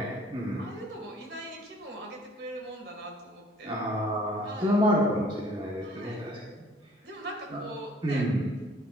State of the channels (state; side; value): normal; both; correlation 0.56